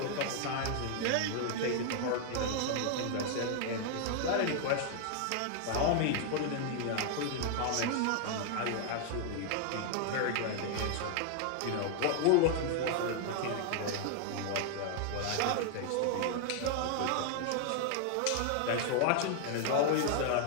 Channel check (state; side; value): different; both; correlation 0.00